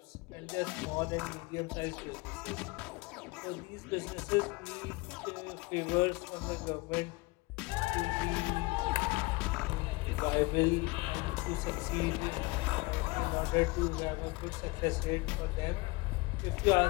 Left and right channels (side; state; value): right; quieter; 24.4 dB